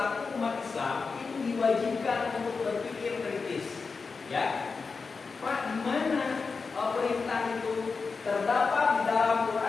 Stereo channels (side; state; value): right; quieter; 4.7 dB